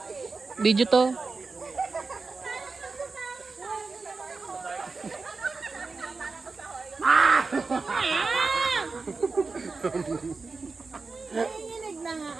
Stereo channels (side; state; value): left; quieter; 4.2 dB